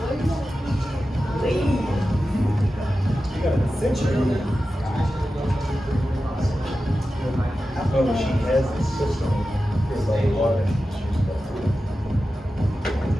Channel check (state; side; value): normal; both; correlation 0.93